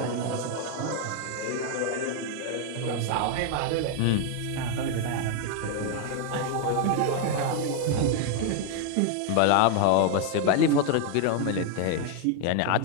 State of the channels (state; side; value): different; both; correlation 0.00